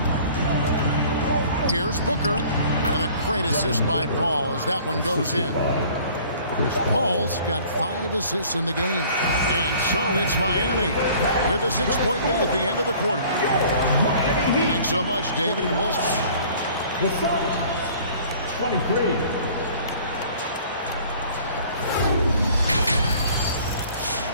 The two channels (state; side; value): inverted; both; correlation -0.51